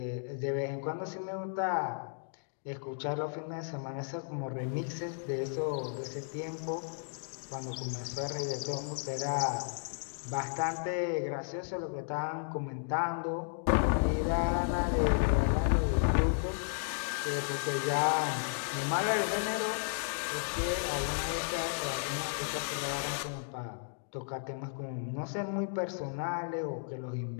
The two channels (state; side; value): silent; right; digital silence